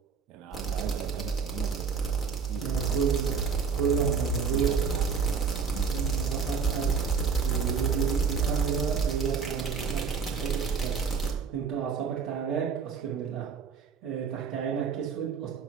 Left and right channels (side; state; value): left; quieter; 5.7 dB